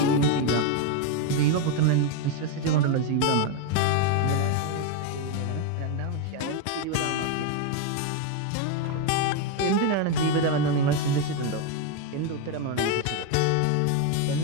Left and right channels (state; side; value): different; both; correlation 0.02